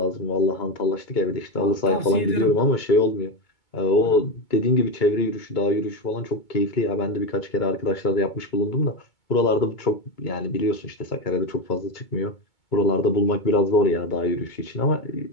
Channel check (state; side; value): late; right; 2.2 ms